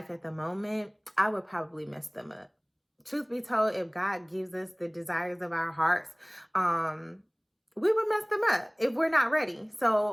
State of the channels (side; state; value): both; identical; correlation 1.00